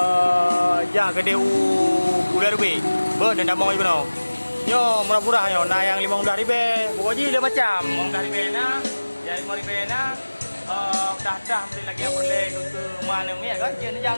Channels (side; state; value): both; inverted; correlation -1.00